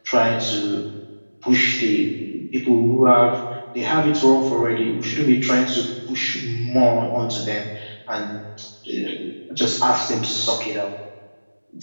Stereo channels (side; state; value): both; inverted; correlation -1.00